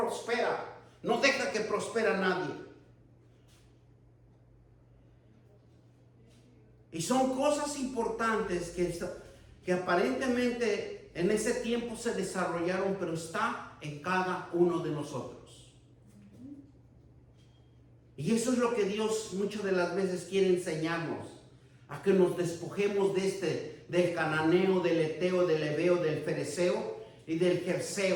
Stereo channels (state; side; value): identical; both; correlation 1.00